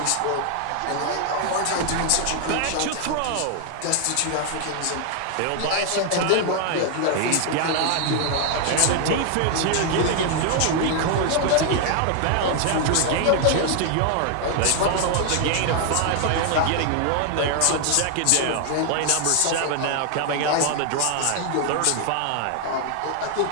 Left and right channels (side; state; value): both; different; correlation 0.00